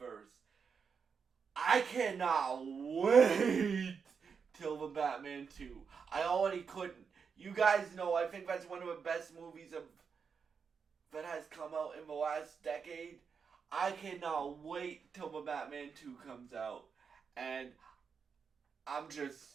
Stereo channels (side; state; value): left; quieter; 6.0 dB